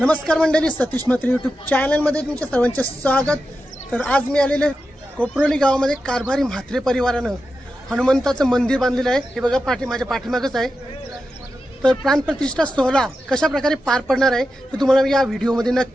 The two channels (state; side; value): normal; both; correlation 0.90